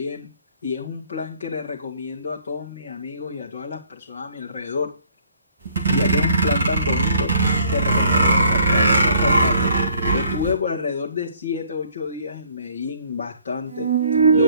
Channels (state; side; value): inverted; both; correlation -0.61